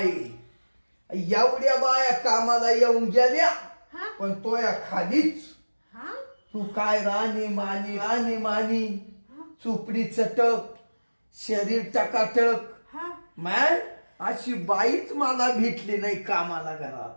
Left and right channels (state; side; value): inverted; both; correlation -1.00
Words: एवढ्या बाया कामाला येऊन गेल्या हा पण तो या खालीच हा तू काय राणी मानी चुपडी चटक शरीर टकाटक हा मॅन अशी बाईच मला भेटली नाही कामाला घरात.